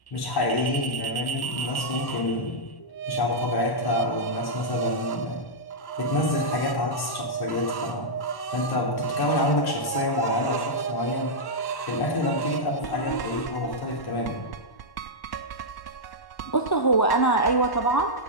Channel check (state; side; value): late; right; 1.1 ms